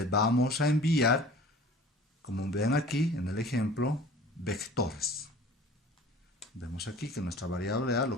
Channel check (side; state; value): both; normal; correlation 0.45